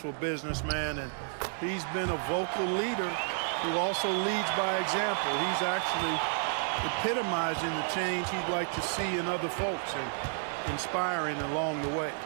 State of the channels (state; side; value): silent; left; 57 dB below the other